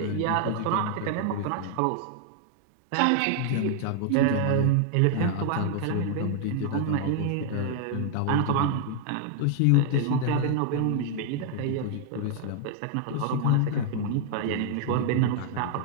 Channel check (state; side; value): different; both; correlation 0.00